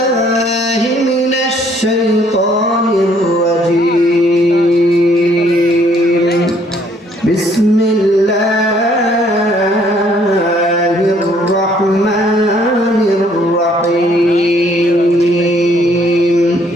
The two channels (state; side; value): normal; both; correlation 0.64